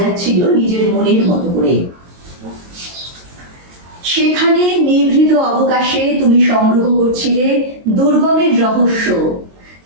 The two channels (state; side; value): late; left; 22 ms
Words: নিজের মনের মতো করে। সেখানে নিভৃত অবকাশে তুমি সংগ্রহ করছিলে দুর্গমের রহস্য,